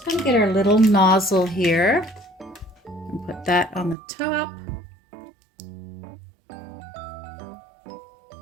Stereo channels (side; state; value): left; drops out; at 4.0 s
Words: going to get our little nozzle here and put that on the top.